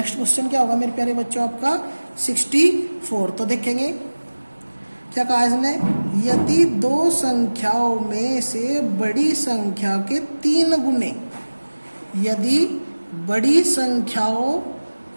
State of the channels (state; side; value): inverted; both; correlation -1.00